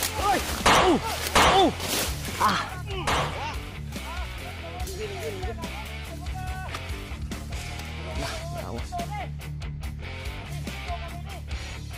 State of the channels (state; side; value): identical; both; correlation 1.00